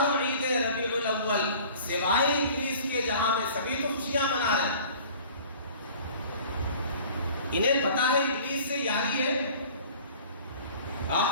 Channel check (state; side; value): inverted; both; correlation -0.47